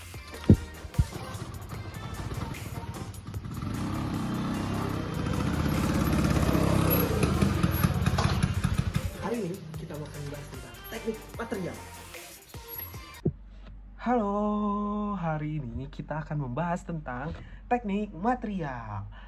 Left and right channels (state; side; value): identical; both; correlation 1.00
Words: Hari ini kita akan membahas tentang teknik material. Halo, hari ini kita akan membahas tentang teknik material.